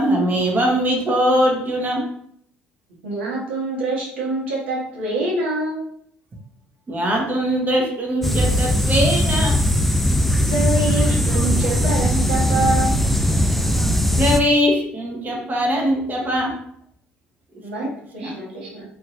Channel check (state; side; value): normal; both; correlation 0.70